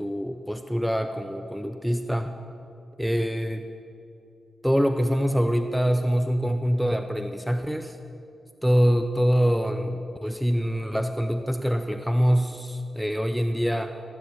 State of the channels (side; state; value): both; normal; correlation 0.98